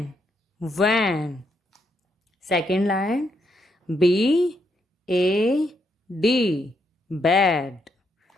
Van. Second line. B A D. Bad.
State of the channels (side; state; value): both; normal; correlation 0.78